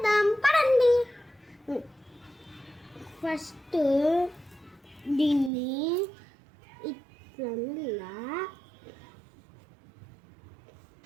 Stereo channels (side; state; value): left; drops out; at 5.5 s